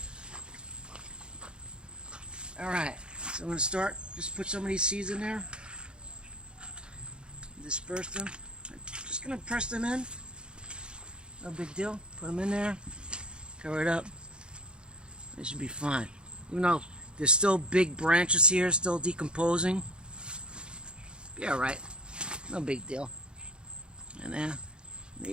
Alright, so I'm going to start, just put some of these seeds in there. Disperse them. I'm just going to press them in. No big deal. Put them in there. Cover it up. They should be fine. Even though there's still big branches here, still decomposing. Be alright. No big deal. And then, there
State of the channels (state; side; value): late; left; 0.051 ms